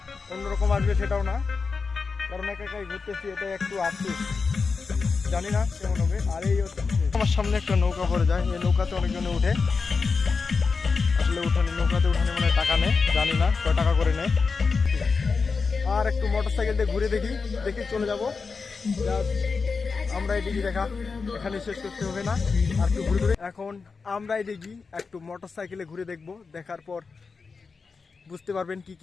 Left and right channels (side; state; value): right; quieter; 4.8 dB